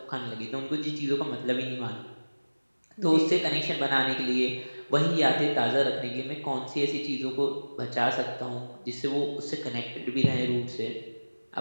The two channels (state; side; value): inverted; both; correlation -1.00